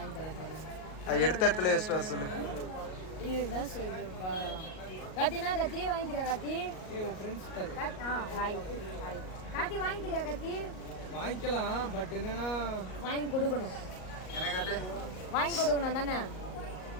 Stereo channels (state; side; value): late; right; 38 ms